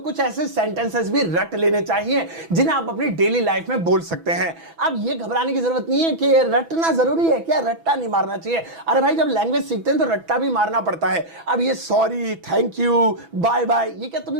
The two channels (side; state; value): left; late; 6.1 ms